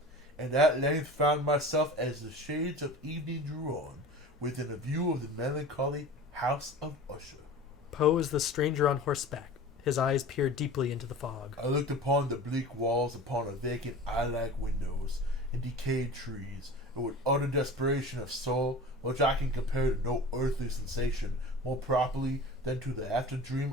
and at length found myself as the shades of evening drew on, within a view of the melancholy House of Usher. Poe is the stranger on horseback. His eyes peer deeply into the fog. I looked upon the bleak walls, upon a vacant eye-like windows, and decayed trees, and with utter desperation of soul, which I can compare to no earthly sensation more properly than to the after-dream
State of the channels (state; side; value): normal; both; correlation 0.37